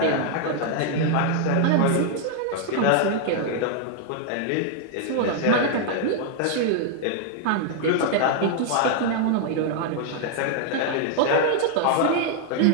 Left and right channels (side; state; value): both; different; correlation 0.00